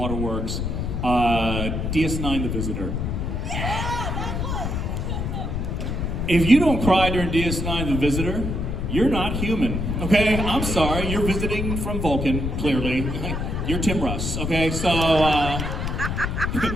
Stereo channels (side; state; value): left; noise; rumble, 2 dB below the sound